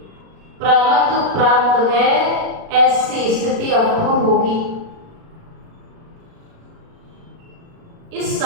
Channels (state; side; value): late; left; 36 ms